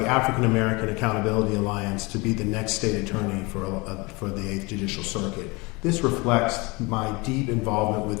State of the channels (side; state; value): right; quieter; 26.1 dB